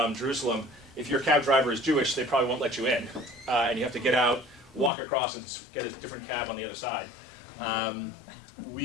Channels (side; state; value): right; drops out; at 4.9 s